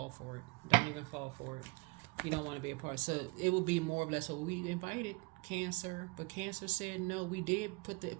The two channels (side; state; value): left; quieter; 25.5 dB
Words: for it. Don't even fall for it. You don't want to be a part. So it will be more or less, well, we invited Cancer, but Cancer said no. We did put